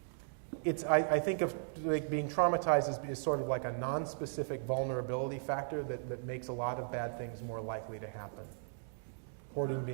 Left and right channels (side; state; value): left; silent; digital silence